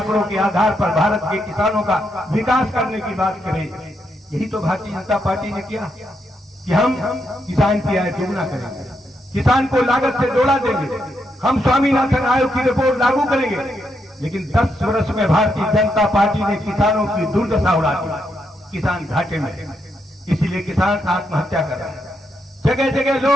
के आधार पर भारत के किसानों का विकास करने की बात करे। यही तो भारतीय जनता पार्टी ने किया कि हम किसान की आय दोगुना करेंगे, किसान को लागत से जोड़ा देंगे, हम स्वामीनाथन आयोग की रिपोर्ट लागू करेंगे। लेकिन 10 वर्ष में भारतीय जनता पार्टी ने किसानों की दुर्दशा उड़ा दी, किसान घाटे में। इसीलिए किसान आत्महत्या कर रहे हैं। जगह जगह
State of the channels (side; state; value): both; normal; correlation 0.80